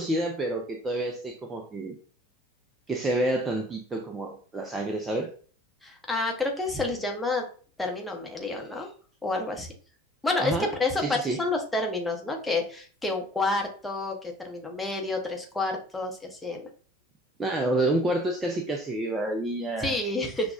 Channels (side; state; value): both; normal; correlation 0.53